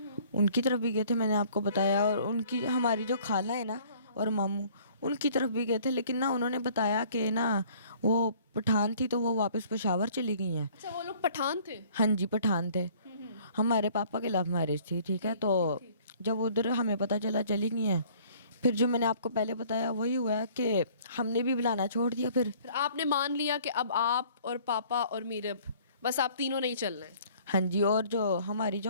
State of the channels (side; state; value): both; inverted; correlation -0.55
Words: उनकी तरफ भी गए थे, मैंने आपको बताया। और उनकी हमारी जो खाला है ना और मामू, उनकी तरफ भी गए थे। लेकिन ना उन्होंने बताया कि ना वो पठान थी, तो वो वापस पेशावर चली गई हैं। अच्छा, वो लोग पठान थे? हाँ जी, पठान थे। हमारे पापा की लव मैरिज थी, ठीक है। तो जब उधर हमें पता चला चली गई हैं, फिर जो मैंने आपको पहले बताया वही हुआ है कि हमने भी बुलाना छोड़ दिया। फिर आपने मान लिया कि अब आप और पापा और मीरब, बस आप तीनों नहीं चलना है। हाँ जी, और जो हमारी